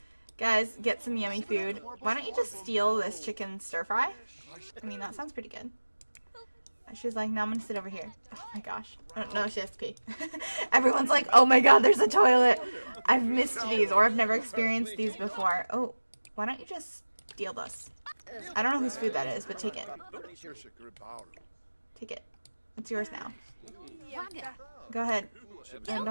Guys, get some yummy food. Why don't you just steal this chicken stir-fry? I mean, that sounds pretty good. She's like, no, I'm gonna sit over here. Oh my gosh. Oh, no, she has to pee. Everyone's like, oh my god, there's a toilet. I've missed these, or I've never experienced these before. Oh, why don't you just steal this? I don't know whose food that is, but take it. Take it. It's yours now. Go ahead. And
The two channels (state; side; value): inverted; both; correlation -1.00